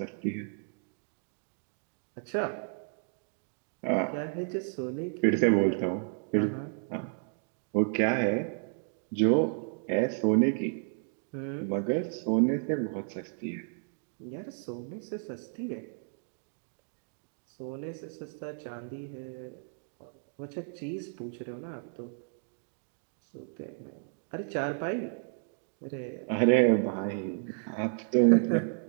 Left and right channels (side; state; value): left; silent; 56 dB below the other